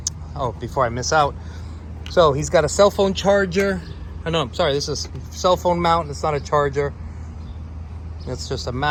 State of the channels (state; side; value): identical; both; correlation 1.00